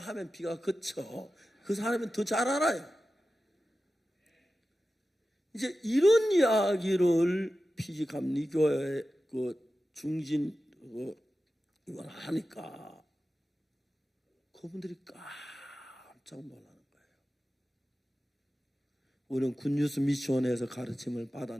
비가 그쳐. 그 사람은 더 잘 알아요. 이제 이런 이야기를 피지감리교회 중진 이걸 하니까 그분들이 깜짝 놀라는 거예요. 우리는 굿뉴스 미션에서 가르침을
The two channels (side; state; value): both; normal; correlation 0.94